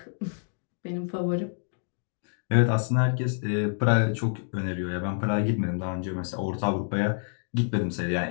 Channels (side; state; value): right; silent; digital silence